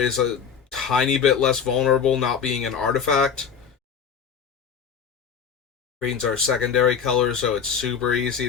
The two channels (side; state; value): right; quieter; 6.9 dB